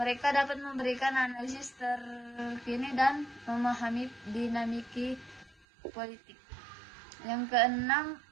dapat memberikan analisis terkini dan memahami dinamika politik.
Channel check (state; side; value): drops out; left; at 5.6 s